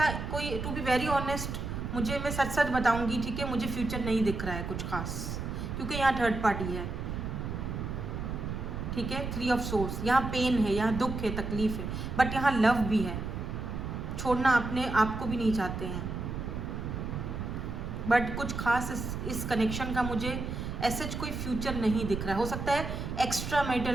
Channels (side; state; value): right; noise; rumble, 5 dB below the sound